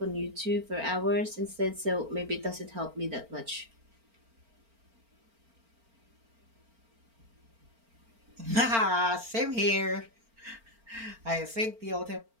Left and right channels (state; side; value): late; left; 4.4 ms